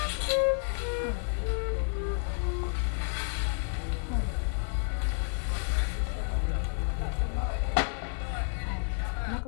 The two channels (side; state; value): right; silent; 57 dB below the other